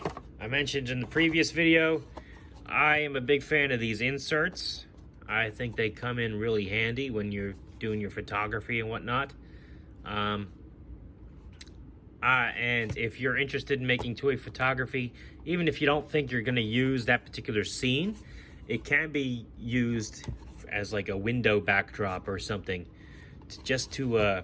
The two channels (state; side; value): identical; both; correlation 1.00